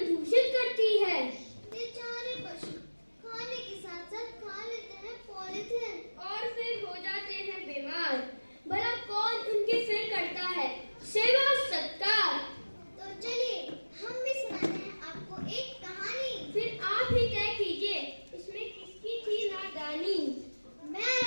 दूषित करती है। बेचारे पशु खाने के साथ साथ खा लेते हैं पॉलीथिन और फिर हो जाते हैं बीमार। भला कौन उनकी फिर करता है सेवा सत्कार। तो चलिए हम भी सुनाते हैं आपको एक कहानी। फिर आप ही तय कीजिए इसमें किसकी थी नादानी। मैं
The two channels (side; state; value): both; inverted; correlation -1.00